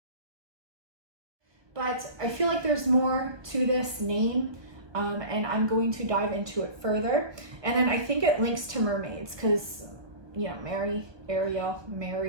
But I feel like there's more to this name, and I'm going to dive into it further. And then I think it links to mermaids because, you know, Mary, Ariel,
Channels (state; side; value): late; left; 1.2 ms